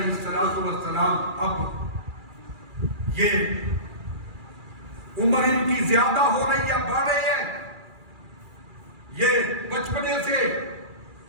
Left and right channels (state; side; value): late; left; 2.4 ms